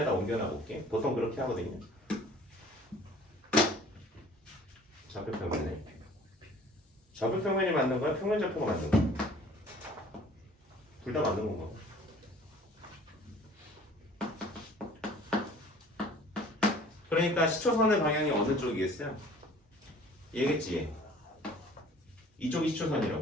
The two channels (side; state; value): both; normal; correlation 0.50